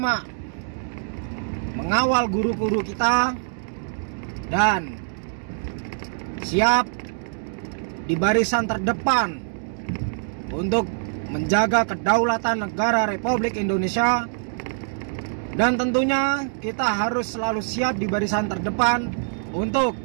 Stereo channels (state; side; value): silent; left; digital silence